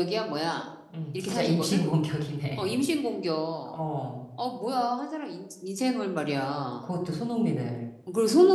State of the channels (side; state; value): both; identical; correlation 1.00